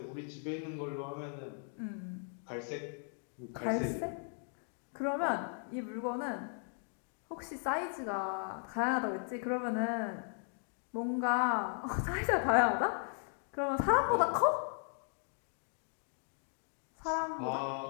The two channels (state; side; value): silent; right; 53 dB below the other